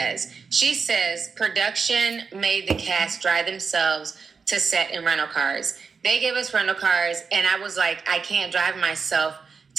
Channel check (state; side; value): quieter; left; 5.3 dB